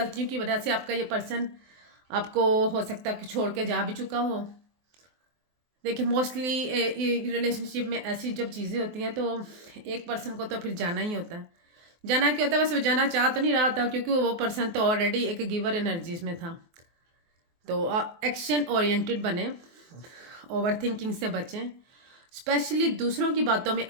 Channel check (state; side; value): late; left; 24 ms